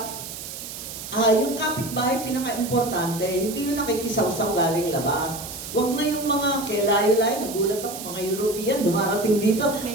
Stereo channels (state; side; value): noise; right; hiss, 10 dB below the sound